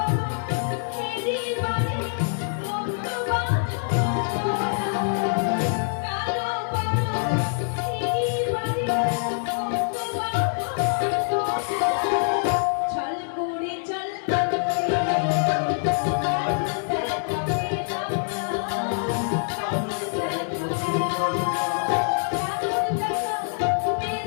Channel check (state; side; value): silent; right; digital silence